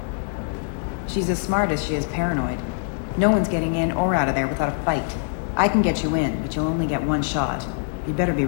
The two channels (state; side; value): silent; right; digital silence